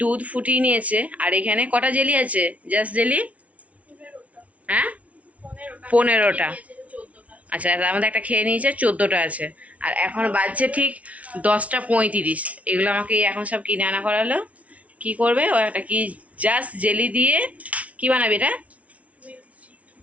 দুধ ফুটিয়ে নিয়েছে, আর এখানে কটা জেলি আছে? জাস্ট জেলি, হ্যাঁ 15টা। আচ্ছা, তার মধ্যে একটা খেয়ে নিয়েছে, 14টা আছে। আর এখন বাজছে ঠিক 10:35। এগুলো আমাকে এখন সব কিনে আনা করালো। কি করবে ও? একটা কি জাস্ট জেলি দিয়ে কি বানাবে এটা?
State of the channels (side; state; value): left; late; 0.067 ms